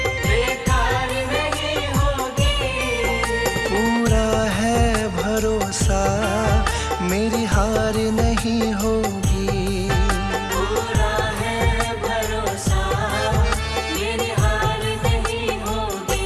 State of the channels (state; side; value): identical; both; correlation 1.00